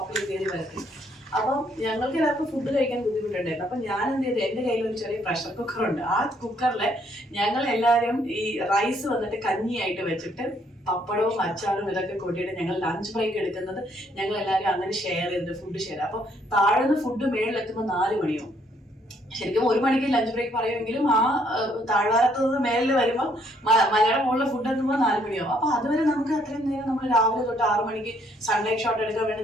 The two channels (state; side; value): normal; both; correlation 0.68